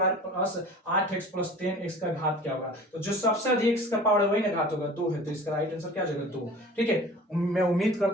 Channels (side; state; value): both; normal; correlation 0.42